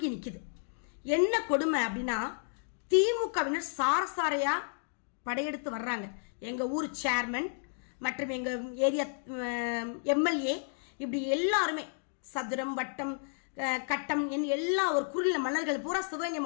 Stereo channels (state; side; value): silent; right; digital silence